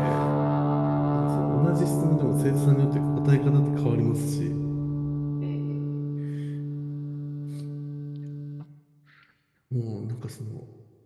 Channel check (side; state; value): both; identical; correlation 1.00